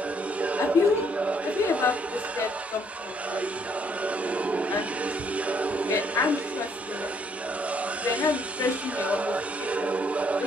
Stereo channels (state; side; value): normal; both; correlation 0.67